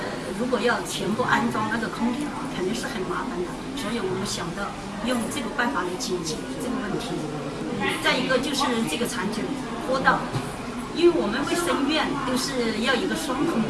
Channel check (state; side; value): identical; both; correlation 1.00